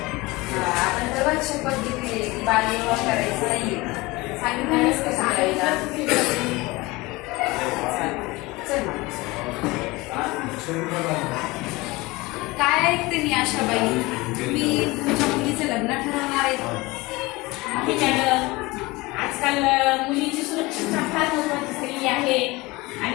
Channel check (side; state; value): right; quieter; 22.2 dB